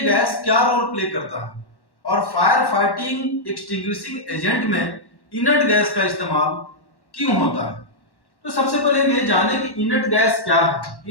क्या रोल प्ले करता है और फायर फाइटिंग एक्सटिंग्विशिंग एजेंट में इनर्ट गैस का इस्तेमाल क्यों होता है। तो सबसे पहले हम ये जाने कि इनर्ट गैस क्या है।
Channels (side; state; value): right; late; 1.1 ms